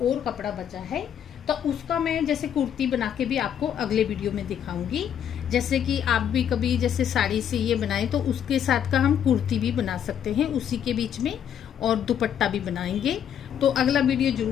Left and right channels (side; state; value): right; quieter; 9.1 dB